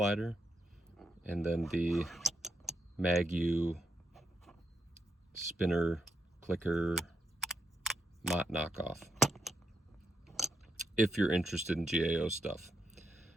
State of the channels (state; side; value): normal; both; correlation 0.81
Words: and then the MagU spinner clicker Mott knockoff, if you're interested in GAO stuff.